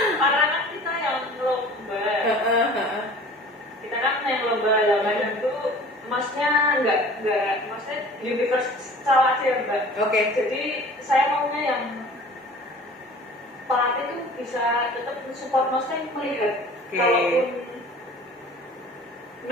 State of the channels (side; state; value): both; normal; correlation 0.45